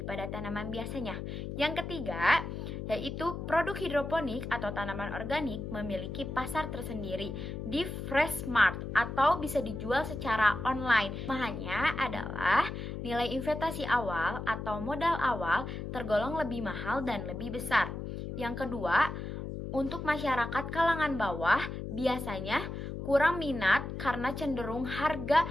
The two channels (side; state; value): left; noise; hum, 6 dB below the sound